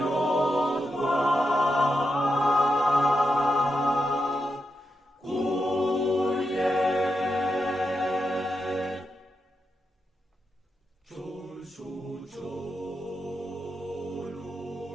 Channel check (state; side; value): normal; both; correlation 0.86